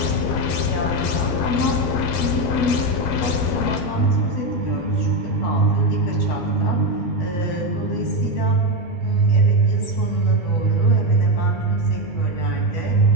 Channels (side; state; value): right; late; 12 ms